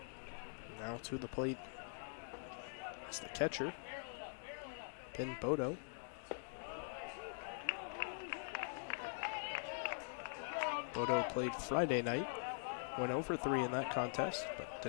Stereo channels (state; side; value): silent; right; digital silence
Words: Now to the plate. It's the catcher, Ben Bodo. Bodo played Friday night, went 0 for 3 in that contest, but